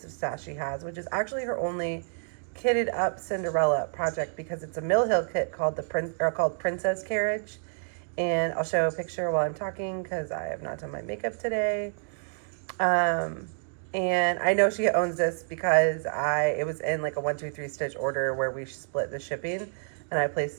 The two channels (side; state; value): left; silent; digital silence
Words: of stash she has, which is actually her only kitted up Cinderella project because it's a Mill Hill kit called Princess Carriage, and I'll show a picture while I'm talking because I have not done my makeup today. And I know she owns this because it was in like a 1-2-3 stitch order where we split the shipping, and I placed